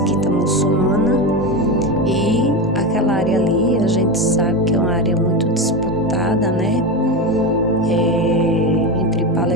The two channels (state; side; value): normal; both; correlation 0.18